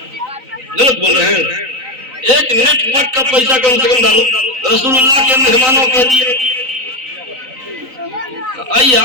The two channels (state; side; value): late; left; 3.9 ms